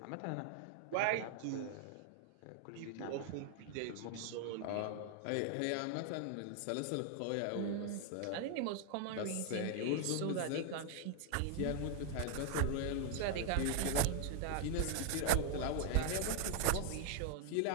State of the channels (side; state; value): both; different; correlation 0.00